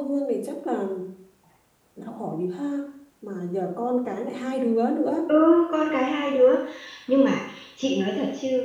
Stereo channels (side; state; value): both; identical; correlation 1.00